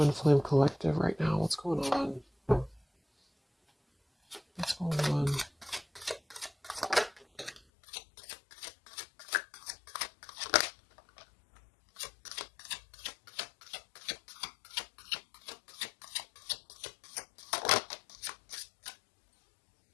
Flame Collective right now. What's going on? What's going on?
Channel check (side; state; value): right; drops out; at 7.6 s